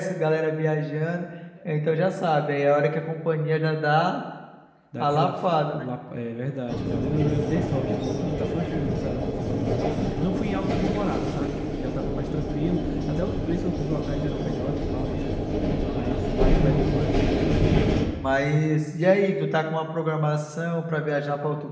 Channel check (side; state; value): both; identical; correlation 1.00